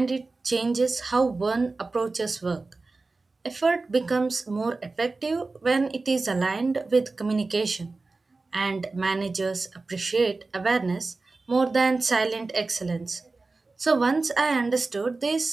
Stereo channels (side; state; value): left; quieter; 3.6 dB